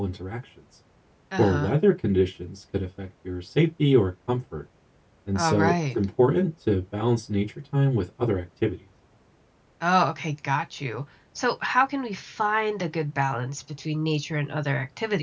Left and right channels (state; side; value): identical; both; correlation 1.00